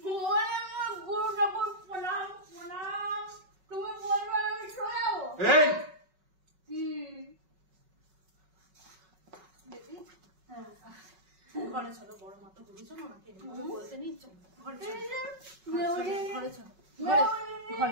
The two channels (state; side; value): late; left; 5.3 ms